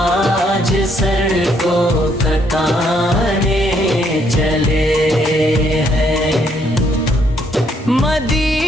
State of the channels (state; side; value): normal; both; correlation 0.70